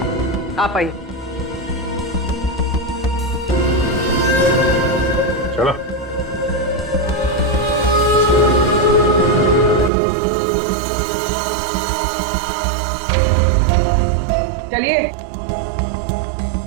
आप आइए। चलो। चलिए।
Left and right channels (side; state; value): left; drops out; at 9.9 s